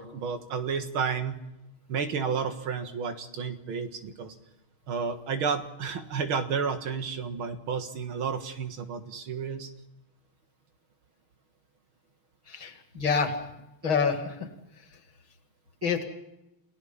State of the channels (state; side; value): late; left; 6.4 ms